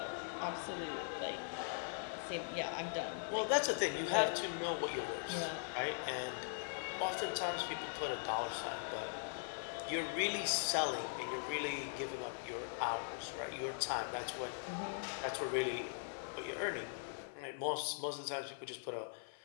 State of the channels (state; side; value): silent; right; 50 dB below the other